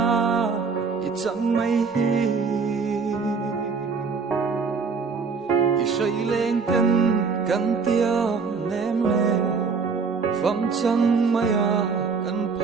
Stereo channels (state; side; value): quieter; left; 5.1 dB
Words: ít chẳng mây hi ít say lên cân tiêu ném lên phong chẳng mây à cần